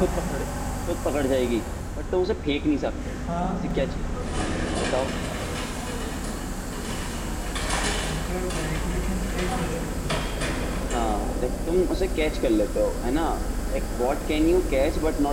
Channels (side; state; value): both; identical; correlation 1.00